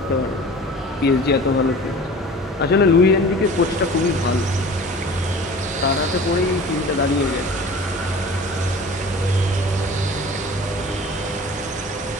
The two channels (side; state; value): both; normal; correlation 0.42